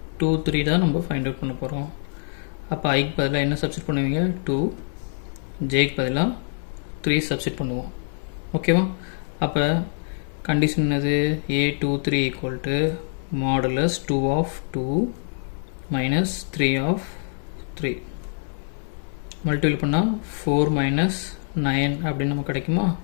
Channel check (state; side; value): silent; right; digital silence